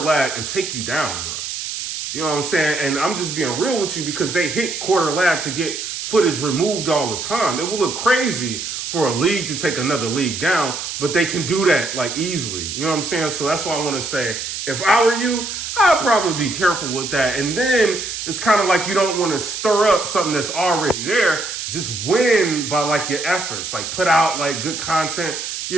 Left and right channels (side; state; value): right; noise; hiss, 5 dB below the sound